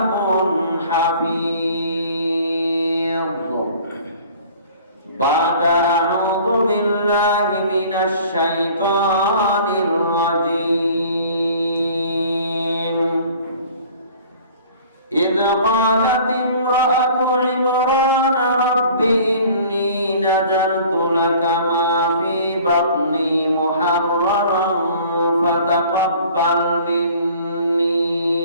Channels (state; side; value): inverted; both; correlation -0.49